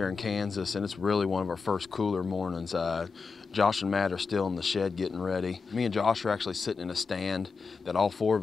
in Kansas, and it's really one of our first cooler mornings. Josh and Matt are still in the shed getting ready. Me and Josh are actually sitting in a stand that all four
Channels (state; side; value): quieter; right; 4.8 dB